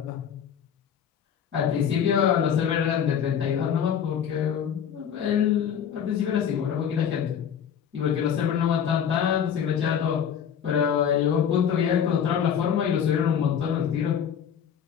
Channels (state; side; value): quieter; right; 8.4 dB